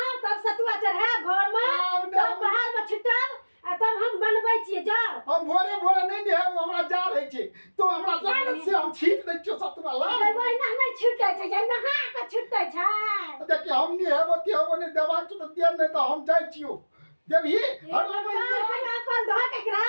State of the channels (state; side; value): inverted; both; correlation -1.00